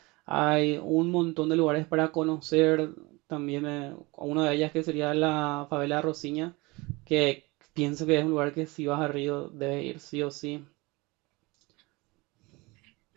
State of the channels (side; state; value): left; quieter; 24.2 dB